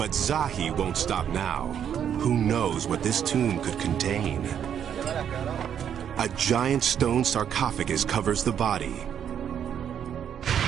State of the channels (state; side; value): quieter; left; 8.8 dB